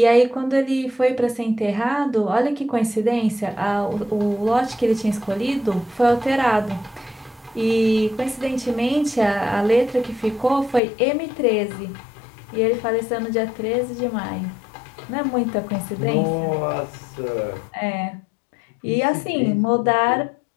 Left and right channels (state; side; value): drops out; right; at 10.8 s